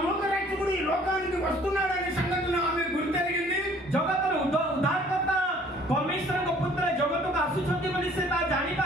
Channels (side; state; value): both; normal; correlation 0.56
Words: లోక రక్షకుడు ఈ లోకానికి వస్తున్నాడనే సంగతిని ఆమె గుర్తెరిగింది। जगत रो उद्धारकर्ता परमेश्वर को पुत्र जगत को आसुछंती बोली से ता जानि